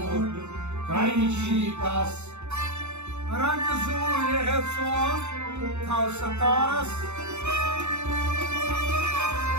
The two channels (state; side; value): late; left; 0.82 ms